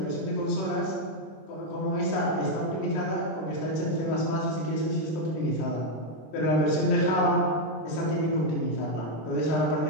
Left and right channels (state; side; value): late; right; 26 ms